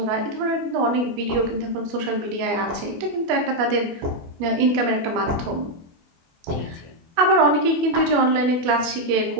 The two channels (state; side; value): late; left; 24 ms